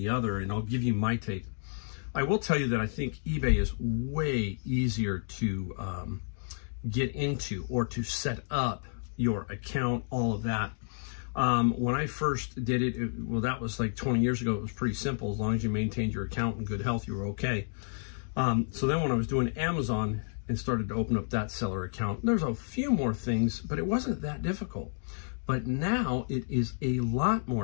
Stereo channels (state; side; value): silent; right; digital silence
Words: other, and I'll give you my take. I will tell you that I think eBay is way easier to get into or to set up your account, all of that. When I first did it, well, that was like 20 years ago. It was pretty simple. As long as you maintained your account in good health, you were okay. So then when I was doing Amazon and started to open up that seller account, there's a few more things, but it wasn't that difficult. But now it is a lot